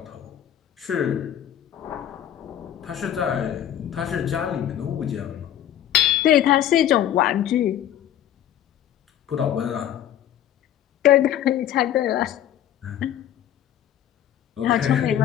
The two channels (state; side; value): quieter; right; 11.1 dB